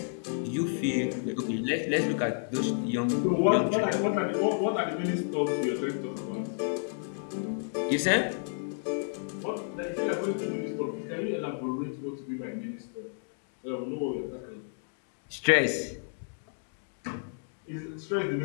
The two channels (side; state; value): right; silent; digital silence